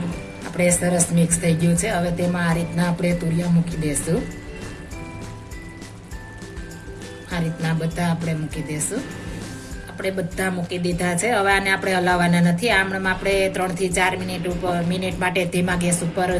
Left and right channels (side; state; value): both; identical; correlation 1.00